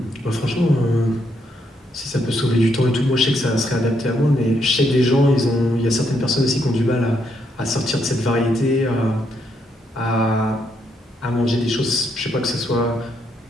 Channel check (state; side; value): normal; both; correlation 0.76